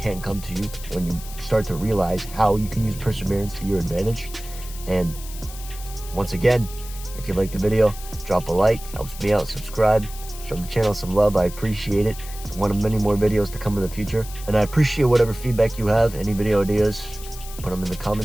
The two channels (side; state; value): left; noise; hiss, 15 dB below the sound